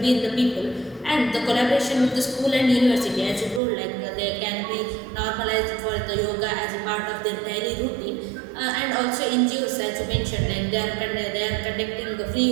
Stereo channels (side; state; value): left; drops out; at 3.6 s